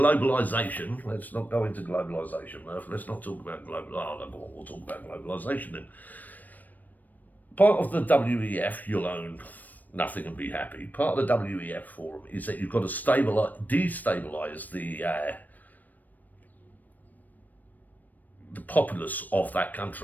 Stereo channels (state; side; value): late; right; 0.084 ms